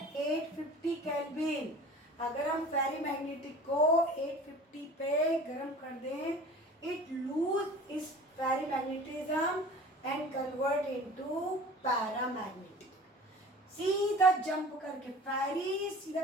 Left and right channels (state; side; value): normal; both; correlation 0.42